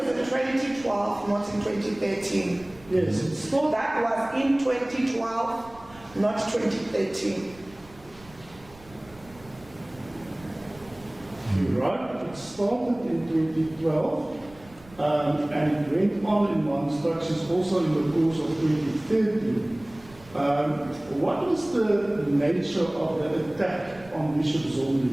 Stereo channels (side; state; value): right; noise; rumble, 23 dB below the sound